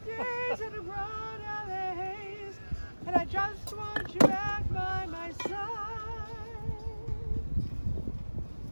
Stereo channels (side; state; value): both; inverted; correlation -1.00